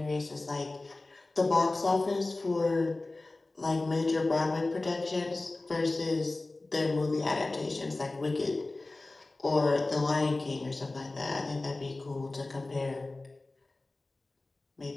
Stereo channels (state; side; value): quieter; right; 3.1 dB